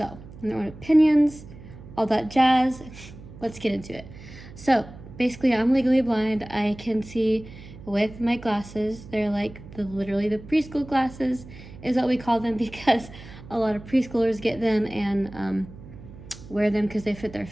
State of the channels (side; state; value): right; noise; hum, 17 dB below the sound